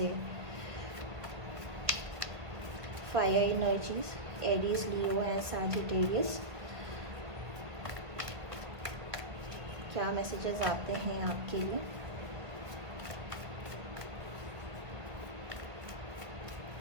Fire energies, Aries, Leo and Sagittarius, क्या मैसेजेस आते हैं आपके लिए।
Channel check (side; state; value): left; late; 1.8 ms